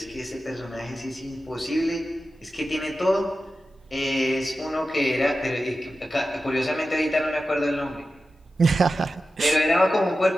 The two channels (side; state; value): both; normal; correlation 0.93